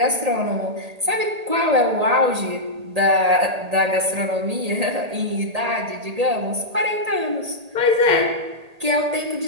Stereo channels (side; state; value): left; late; 1.8 ms